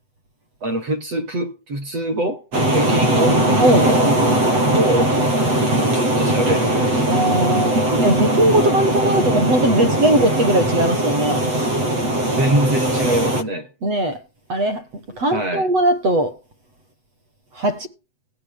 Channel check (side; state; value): left; late; 8.0 ms